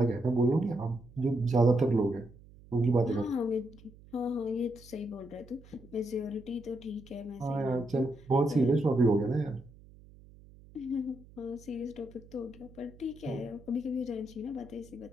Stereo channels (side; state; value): right; noise; hum, 22 dB below the sound